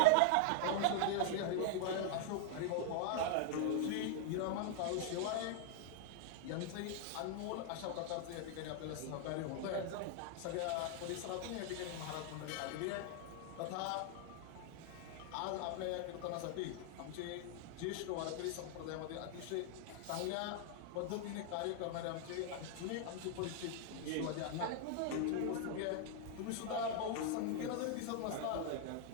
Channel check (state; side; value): different; both; correlation 0.00